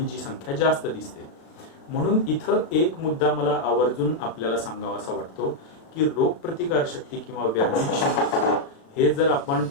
संख्या जास्त दिसते. म्हणून इथं एक मुद्दा मला आवर्जून आपल्याला सांगावासा वाटतो की रोगप्रतिकार शक्ती किंवा व्याधी क्षमत्व हे जर आपण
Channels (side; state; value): right; late; 36 ms